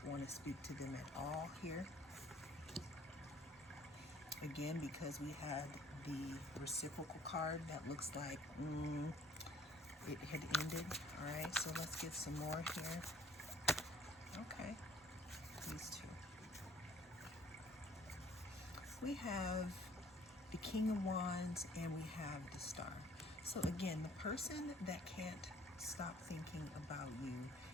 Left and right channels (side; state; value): both; normal; correlation 0.56